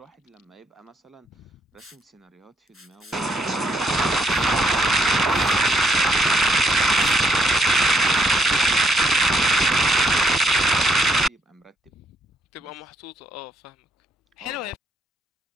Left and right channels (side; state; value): both; normal; correlation 0.71